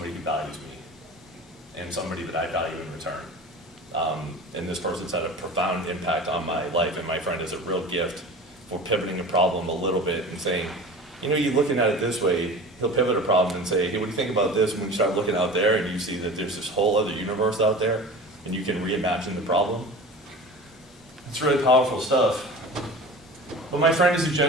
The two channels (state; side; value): normal; both; correlation 0.36